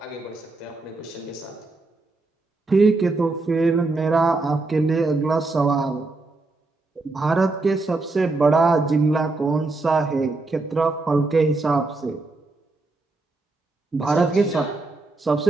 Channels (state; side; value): quieter; left; 3.4 dB